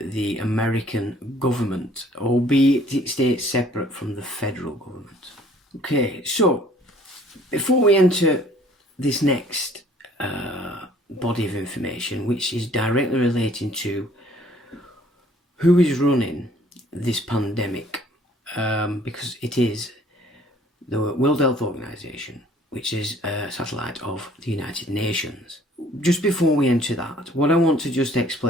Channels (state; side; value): normal; both; correlation 0.57